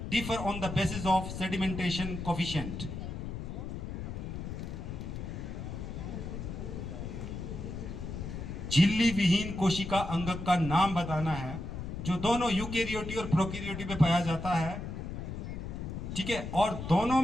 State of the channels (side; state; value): left; noise; rumble, 6 dB below the sound